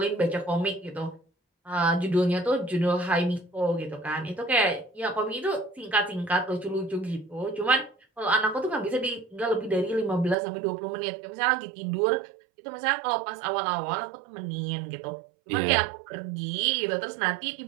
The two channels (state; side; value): drops out; left; at 10.4 s